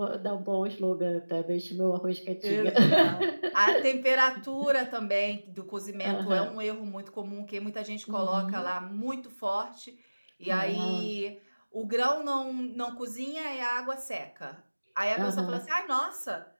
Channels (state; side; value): inverted; both; correlation -1.00